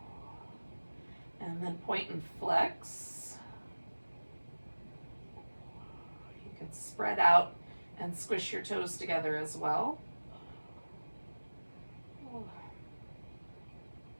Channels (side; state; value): both; inverted; correlation -1.00